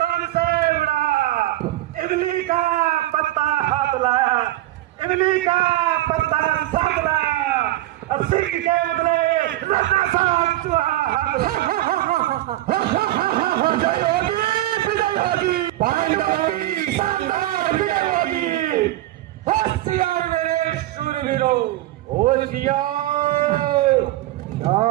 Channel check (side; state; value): left; quieter; 16.1 dB